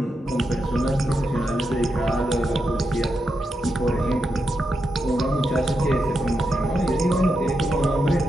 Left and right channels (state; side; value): normal; both; correlation 0.86